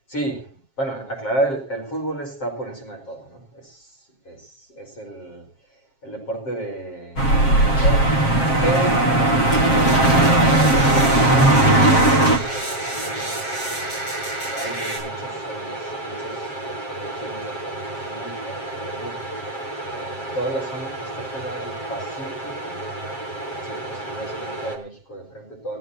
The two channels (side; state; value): right; late; 7.5 ms